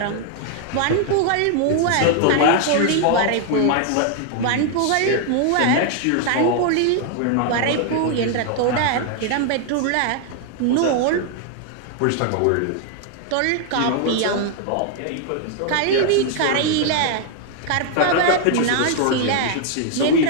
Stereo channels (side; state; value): both; different; correlation 0.00